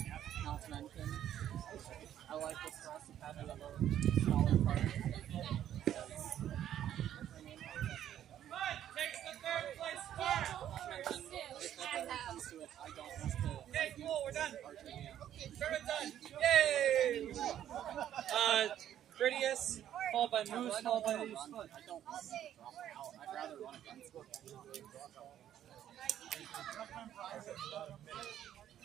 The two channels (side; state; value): left; quieter; 11.0 dB